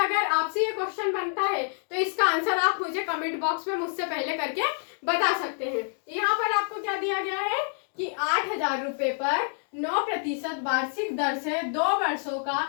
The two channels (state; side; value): silent; right; 56 dB below the other